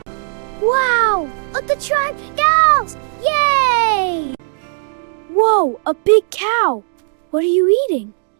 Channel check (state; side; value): silent; left; digital silence